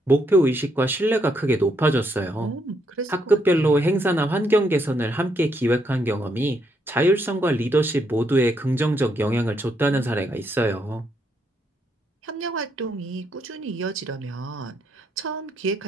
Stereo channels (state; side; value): normal; both; correlation 0.76